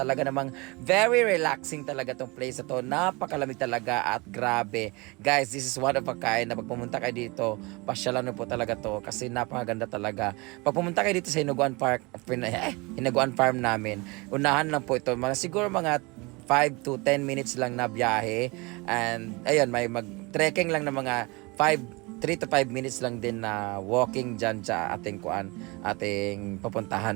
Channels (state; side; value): quieter; left; 26.0 dB